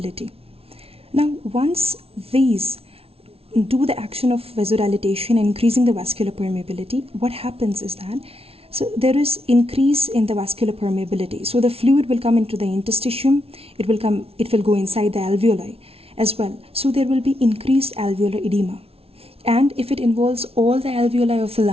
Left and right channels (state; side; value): late; left; 0.28 ms